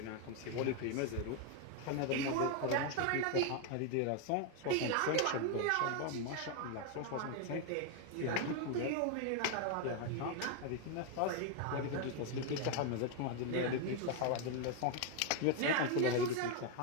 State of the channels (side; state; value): both; different; correlation 0.01